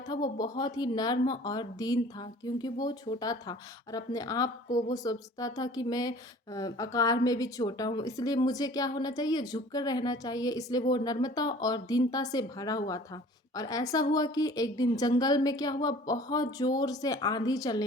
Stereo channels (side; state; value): both; normal; correlation 0.48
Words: वो बहुत ही नर्म और दीन था क्योंकि वो छोटा था और अपने आप को वो सोचता था कि मैं आकार में भी छोटा हूँ, इसलिए मुझे क्या होना चाहिए, झुक कर रहना चाहिए। इसलिए वो नर्मता और दीनता से भरा हुआ था। और ऐसा हुआ कि एक दिन जंगल में क्या हुआ, बहुत ज़ोर से आंधी